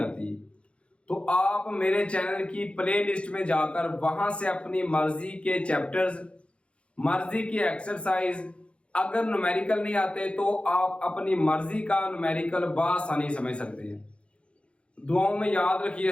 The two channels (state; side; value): late; right; 0.059 ms